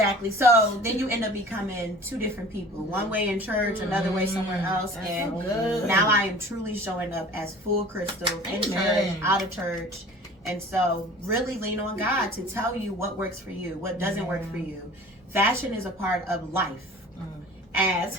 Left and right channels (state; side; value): normal; both; correlation 0.44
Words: So then you end up becoming two different people. One way in church, another way somewhere else. That's And so good. now I am truly showing up as full Crystal in Amen. church, out of church. And so really lean on God to tell you what works for you, what doesn't work for you. Fashion is a part of life.